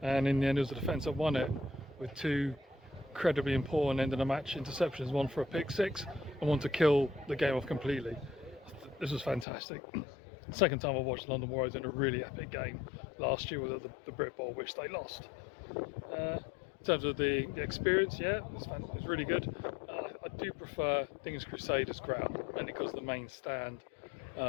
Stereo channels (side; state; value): right; drops out; at 9.5 s